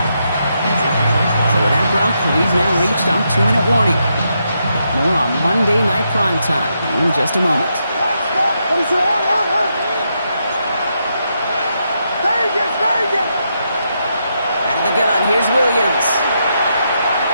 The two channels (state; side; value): inverted; both; correlation -0.81